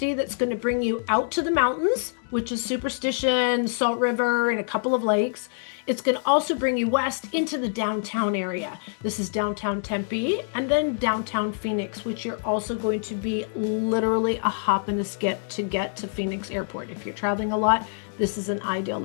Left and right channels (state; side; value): silent; right; digital silence